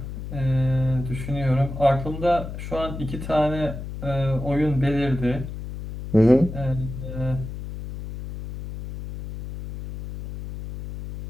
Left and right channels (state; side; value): noise; left; hum, 9 dB below the sound